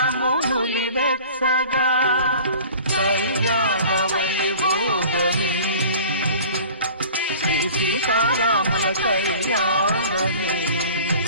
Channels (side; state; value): both; inverted; correlation -0.43